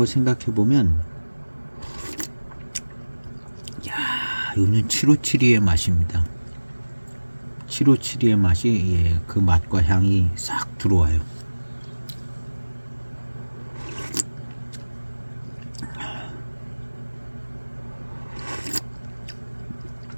생각해 보면 이거는 7572의 맛입니다. 7572의 맛이 그 맛과 향이 싹 들어와요.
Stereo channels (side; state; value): both; inverted; correlation -1.00